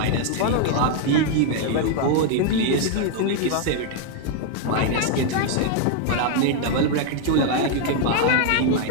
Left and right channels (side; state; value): both; different; correlation 0.00